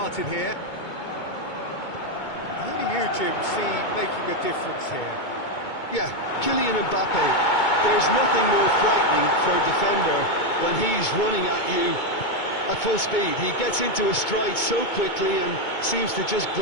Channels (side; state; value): right; late; 2.2 ms